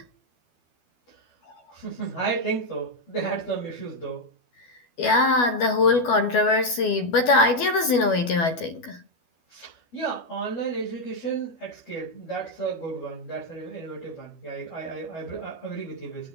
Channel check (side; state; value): right; late; 12 ms